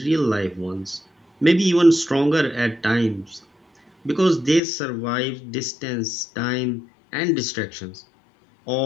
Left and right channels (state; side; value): drops out; right; at 4.6 s